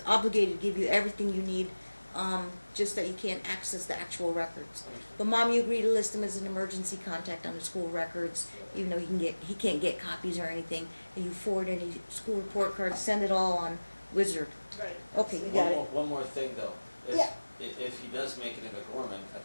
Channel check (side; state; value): both; inverted; correlation -1.00